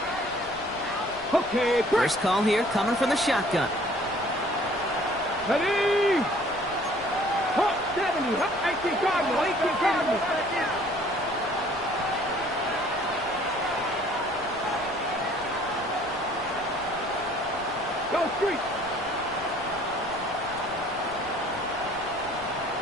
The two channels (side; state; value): right; noise; rumble, 21 dB below the sound